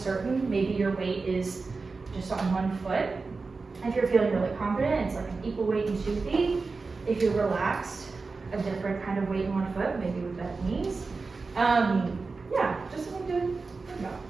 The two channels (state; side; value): quieter; left; 4.1 dB